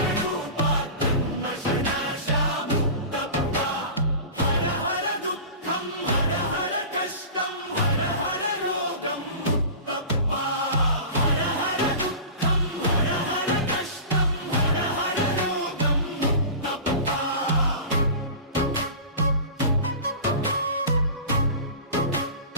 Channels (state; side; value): inverted; both; correlation -0.35